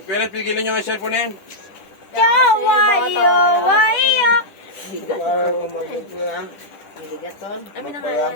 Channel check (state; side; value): late; right; 10 ms